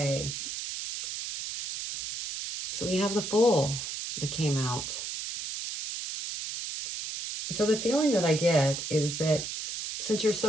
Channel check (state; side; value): noise; right; hiss, 6 dB below the sound